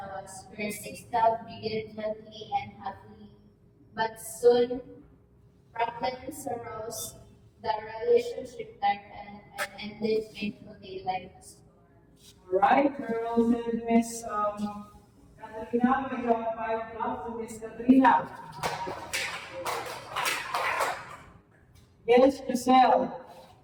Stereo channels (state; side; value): identical; both; correlation 1.00